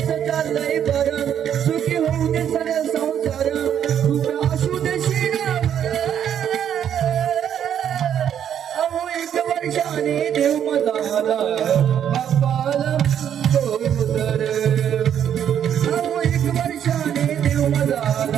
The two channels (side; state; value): left; quieter; 9.3 dB